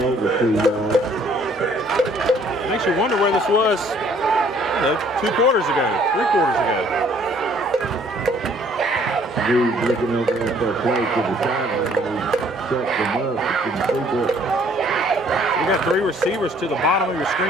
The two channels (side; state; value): both; normal; correlation 0.60